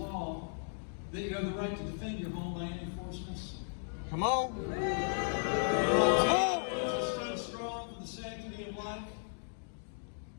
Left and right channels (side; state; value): right; silent; digital silence